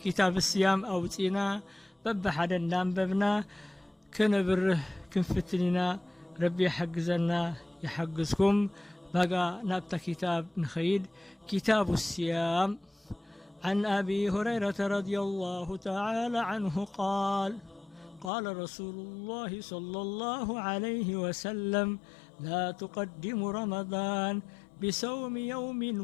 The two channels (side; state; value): right; drops out; at 18.3 s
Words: الصيام أو تينا بب حدا دام ببنا كنبره كنفتننا ربي يحجزنا يحجزكم. بقى نبتا كتاب نخيد كتاب الصيام. عن أبي هريرة رضي الله تعالى عنه قال: قال رسول الله صلى الله عليه وسلم: لا تقدم رمضان بصوم يوم